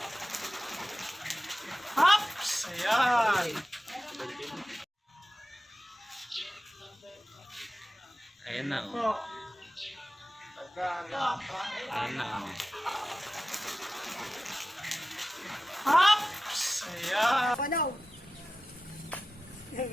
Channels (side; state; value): both; normal; correlation 0.94